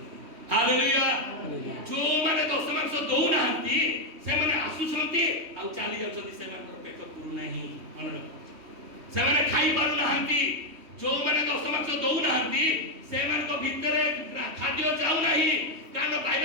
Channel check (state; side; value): late; left; 3.1 ms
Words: ହାଲେଲୁୟା जो माने दश मास दौनाहांती से माने आसुଛନ୍ତି ଆଉ ଚାଲି ଯାଉଛନ୍ତି ସେମାନଙ୍କର ପେଟ ପୁରୁ ନାହିଁ ମନେ ରଖ ସେମାନେ ଖାଇ ପାରୁ ନାହାନ୍ତି जो माने दश मास ଦଉନାହାନ୍ତି ସେମାନଙ୍କ ଭିତରେ ଖାଦ୍ୟ ଯାଉ ନାହିଁ କାରଣ